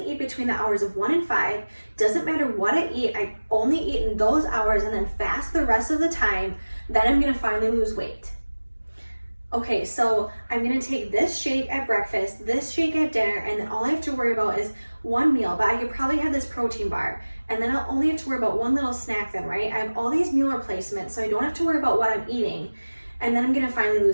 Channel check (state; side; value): inverted; both; correlation -1.00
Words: eat between the hours of 1 and 5, doesn't matter what I eat, I only eat in those hours and then fast the rest of the time, then I'm going to finally lose weight. Okay, so I'm gonna take this shake at breakfast, this shake at dinner, and then all I have to worry about is one meal, but I could probably have this protein bar, and then I'll only have to worry about one little snack then, right? I have all these meal replacements, so I don't have to worry about what I'm eating, and then I'm gonna finally